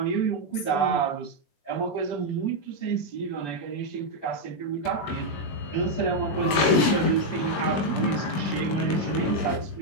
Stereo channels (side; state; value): right; late; 20 ms